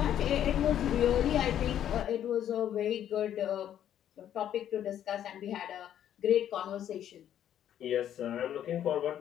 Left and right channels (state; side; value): quieter; right; 10.6 dB